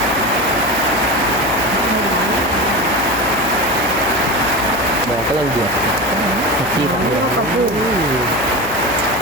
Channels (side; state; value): left; noise; hum, 16 dB below the sound